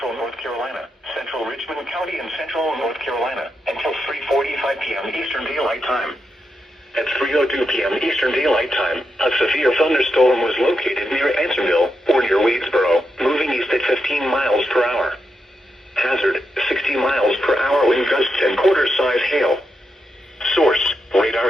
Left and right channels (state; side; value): normal; both; correlation 0.85